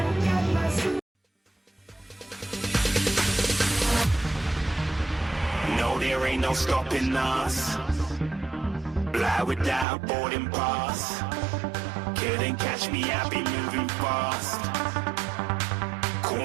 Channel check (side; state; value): left; drops out; at 9.9 s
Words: No, there ain't no stopping us. Fly without boarding pass. Couldn't catch me, I be moving fast.